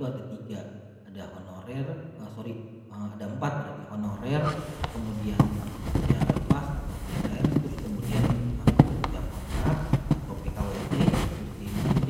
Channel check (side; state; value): both; identical; correlation 1.00